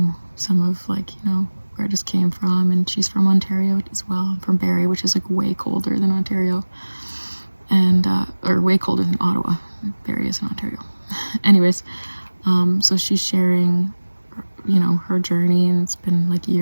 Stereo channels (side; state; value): both; inverted; correlation -1.00